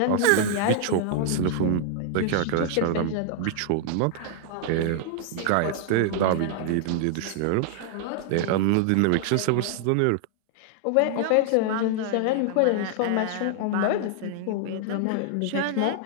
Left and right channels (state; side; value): different; both; correlation 0.00